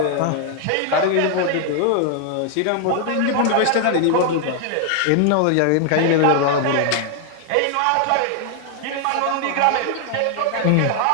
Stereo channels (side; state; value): both; different; correlation 0.00